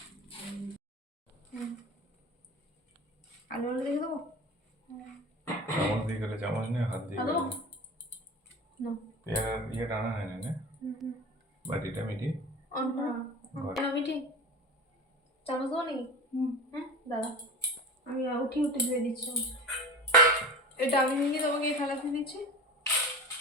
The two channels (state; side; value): normal; both; correlation 0.33